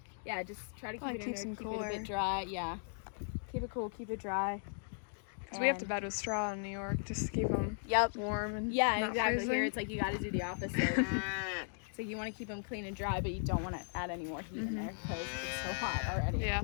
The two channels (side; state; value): right; silent; digital silence